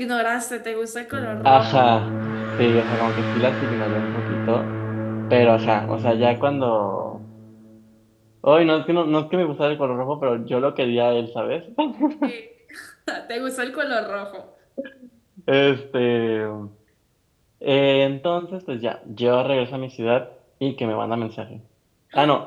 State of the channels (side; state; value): both; identical; correlation 1.00